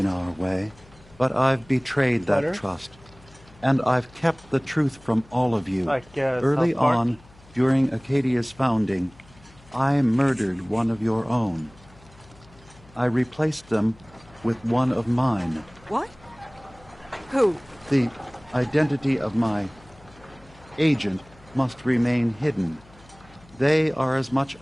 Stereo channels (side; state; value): left; noise; hum, 25 dB below the sound